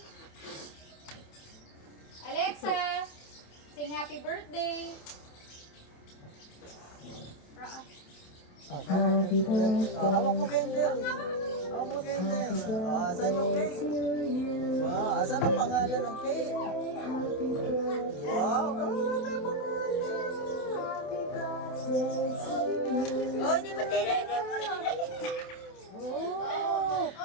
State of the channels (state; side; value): late; right; 27 ms